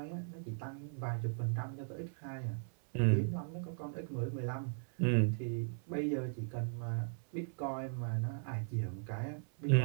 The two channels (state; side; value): silent; left; 52 dB below the other